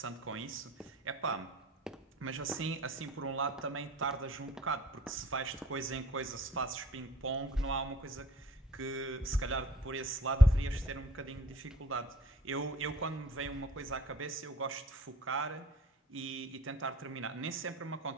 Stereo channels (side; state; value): both; normal; correlation 0.52